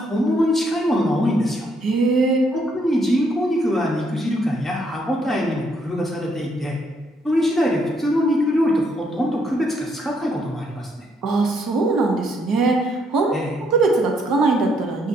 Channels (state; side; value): normal; both; correlation 0.72